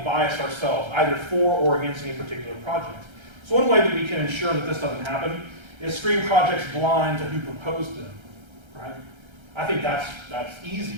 bias ourselves, either for or against any particular project. So one way that we can ensure that this doesn't happen is screen projects blind to who proposed them. Right? I think that's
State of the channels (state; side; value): late; left; 1.3 ms